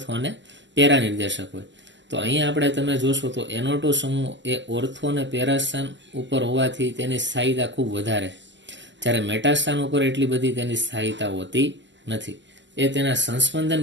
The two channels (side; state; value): left; late; 0.53 ms